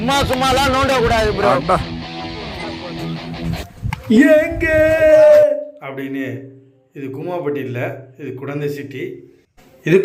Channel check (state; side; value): identical; both; correlation 1.00